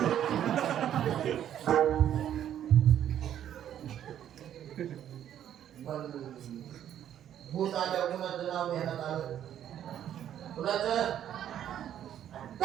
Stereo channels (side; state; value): left; quieter; 10.5 dB